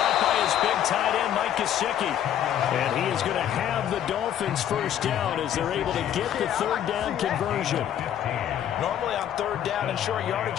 by his big tight end, Mike Gesicki. And he is going to have the Dolphins first down as they're able to get the 3rd down conversion. Normally on 3rd down and short yardage,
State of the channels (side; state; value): right; quieter; 10.5 dB